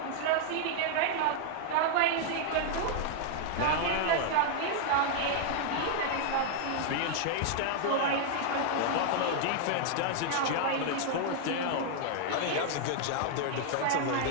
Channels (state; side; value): different; both; correlation 0.00